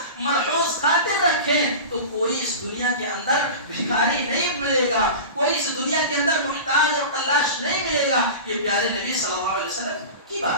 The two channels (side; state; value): both; inverted; correlation -0.31